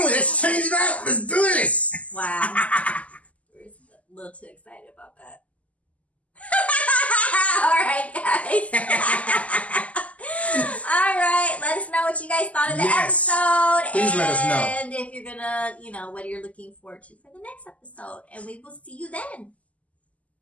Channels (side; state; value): right; late; 0.069 ms